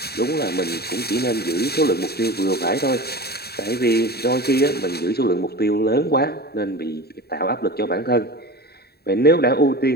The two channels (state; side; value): late; right; 0.46 ms